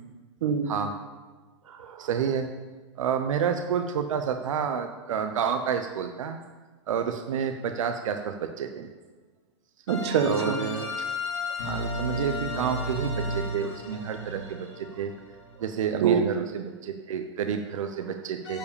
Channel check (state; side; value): quieter; left; 5.6 dB